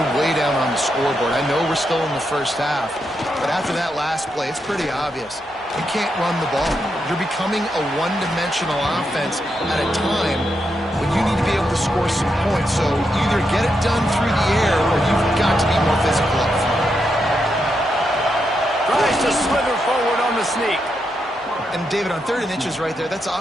way down on the scoreboard. I know we're still in the first half, but after that last play, it's pretty obvious. You can't run the ball. You're becoming a one-dimensional offense at a time when you need to be able to score some points. So either get it done through the air or you've got to be more physical up front. Tries to slither forward on the sneak. And, David, on 3rd and inches right there, that's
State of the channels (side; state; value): both; normal; correlation 0.83